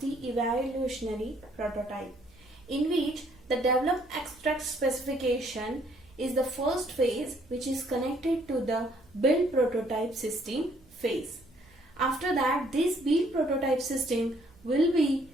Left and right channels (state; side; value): noise; right; hum, 29 dB below the sound